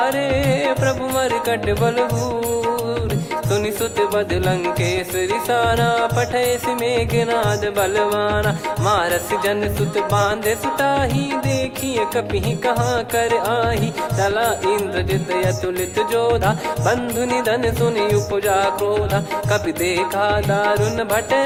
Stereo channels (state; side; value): identical; both; correlation 1.00